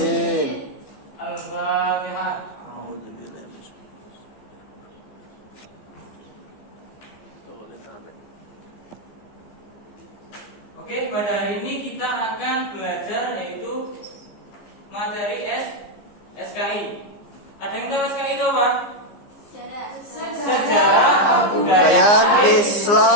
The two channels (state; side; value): late; right; 15 ms